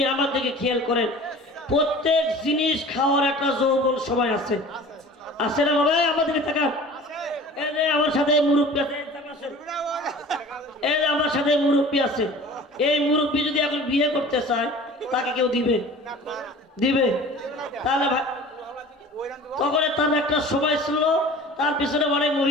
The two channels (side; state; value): both; normal; correlation 0.43